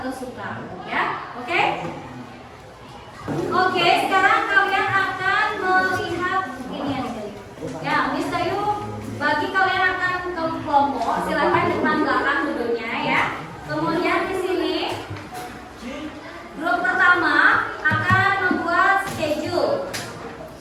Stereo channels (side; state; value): both; identical; correlation 1.00